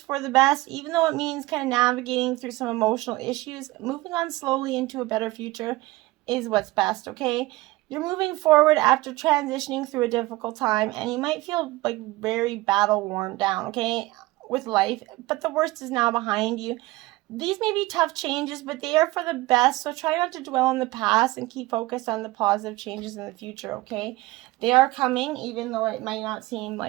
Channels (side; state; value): left; quieter; 20.0 dB